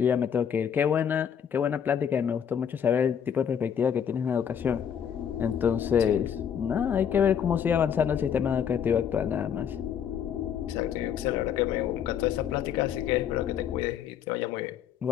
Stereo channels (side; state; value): right; quieter; 8.3 dB